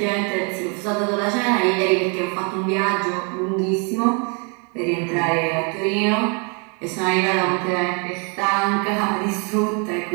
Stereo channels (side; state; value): left; quieter; 36.0 dB